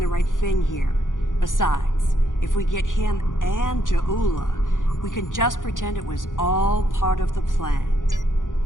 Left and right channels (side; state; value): right; late; 0.88 ms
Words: right thing here. Besides, if we get him and Jaula, we can just pretend it was all part of the plan.